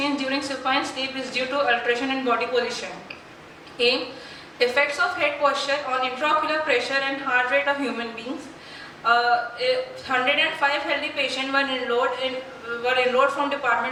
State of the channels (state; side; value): identical; both; correlation 1.00